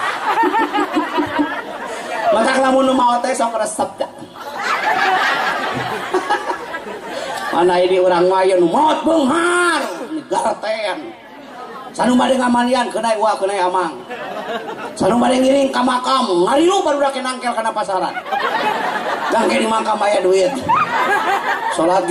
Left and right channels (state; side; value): identical; both; correlation 1.00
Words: maka lamun nu maot teh sok resep da. Mana ini urang maya nu maot beunghar garten. Sanu bade ngamalian keunai uah keunai amang. Sanu bade ngiring ka makam ngarilu barudak nangkel kana pasaran. Gangke di makam aya duit. Salat